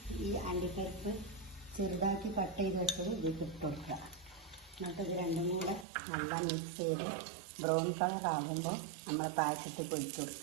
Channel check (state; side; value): drops out; left; at 5.9 s